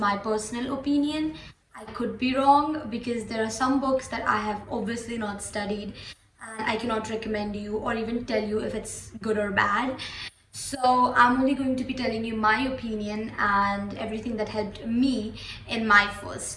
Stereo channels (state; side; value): identical; both; correlation 1.00